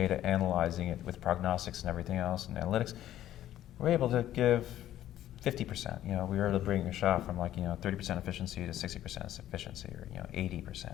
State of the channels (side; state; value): right; quieter; 12.7 dB